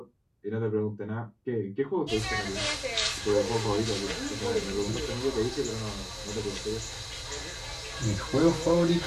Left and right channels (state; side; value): identical; both; correlation 1.00